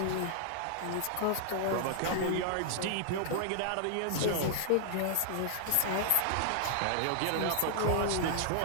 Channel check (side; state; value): both; different; correlation 0.00